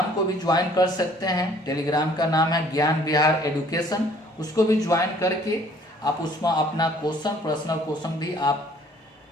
को भी ज्वाइन कर सकते हैं। टेलीग्राम का नाम है ज्ञान विहार एडुकेशन, उसको भी ज्वाइन करके आप उसमें अपना पर्सनल क्वेश्चन भी आप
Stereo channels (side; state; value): both; normal; correlation 0.58